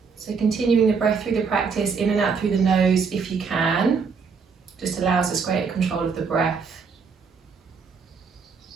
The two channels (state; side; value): quieter; left; 5.5 dB